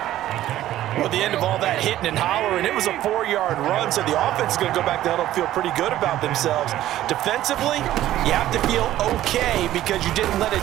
at the end of all that hitting and hollering, it was a 4-yard run, so the offense is going to go back there and feel pretty good about themselves. Defensively, you have to feel okay because you didn't let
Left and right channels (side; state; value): left; quieter; 13.6 dB